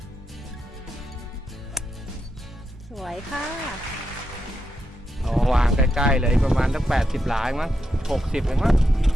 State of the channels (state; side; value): normal; both; correlation 0.84